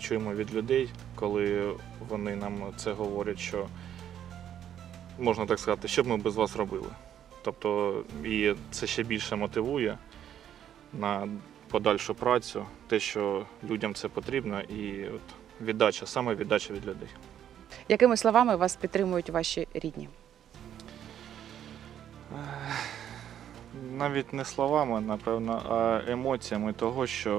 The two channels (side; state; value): left; quieter; 10.2 dB